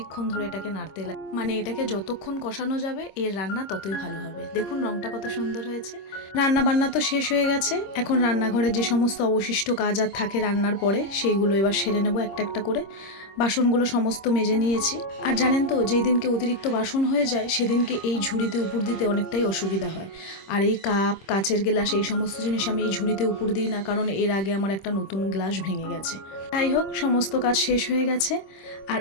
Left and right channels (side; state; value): right; late; 26 ms